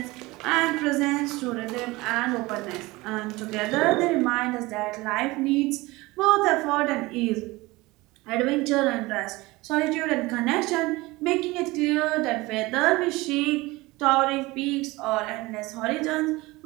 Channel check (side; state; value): left; quieter; 21.4 dB